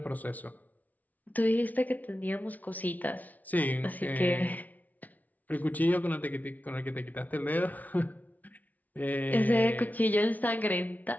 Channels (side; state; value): right; late; 0.076 ms